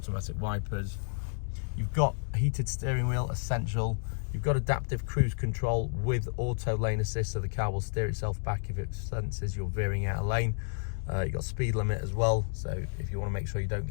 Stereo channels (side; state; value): right; silent; digital silence